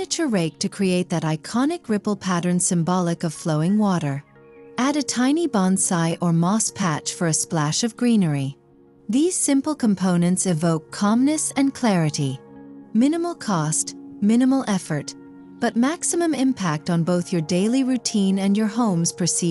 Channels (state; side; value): identical; both; correlation 1.00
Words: rake to create that iconic ripple pattern symbolic of flowing water. Add a tiny bonsai or moss patch for a splash of greenery. These simple components evoke calmness and clarity. Minimal cost, minimal effort, but maximum impact on both your daily routine and your home's